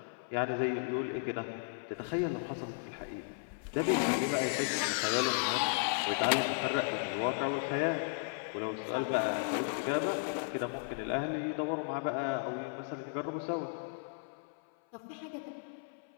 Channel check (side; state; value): right; silent; 55 dB below the other